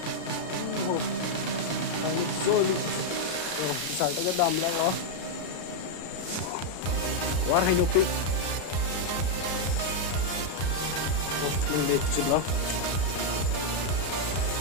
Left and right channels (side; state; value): right; late; 33 ms